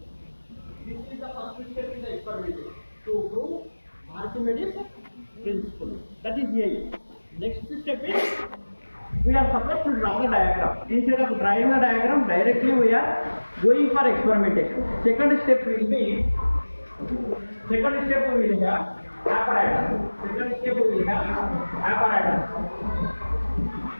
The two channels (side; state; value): both; inverted; correlation -1.00